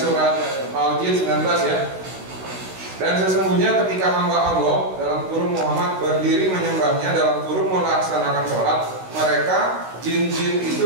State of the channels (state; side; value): late; left; 16 ms